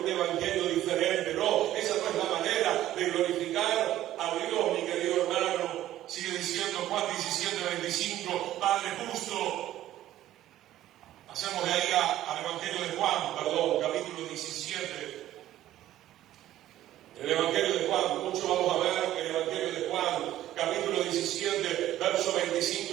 evangelio diferente. No, esa no es la manera de glorificar a Dios, mi querido hermano. Sigue diciendo Juan 17:25, Padre justo. Pasemos de ahí al Evangelio de Juan, capítulo 17. El Evangelio de Juan, mucho vamos a ver el Evangelio de Juan, capítulo 17, versos 25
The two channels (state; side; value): quieter; left; 13.5 dB